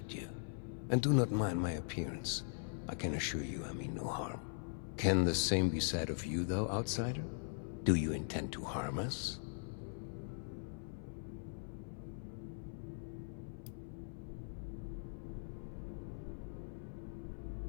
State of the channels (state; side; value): silent; right; 50 dB below the other